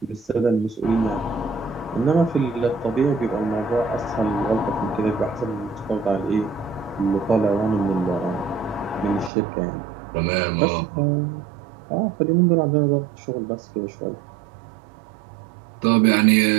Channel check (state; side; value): drops out; left; at 9.3 s